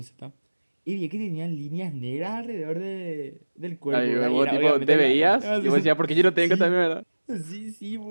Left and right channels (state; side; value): inverted; both; correlation -1.00